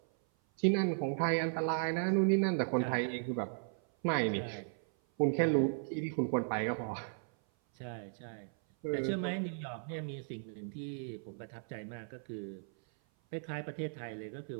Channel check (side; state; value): left; silent; 54 dB below the other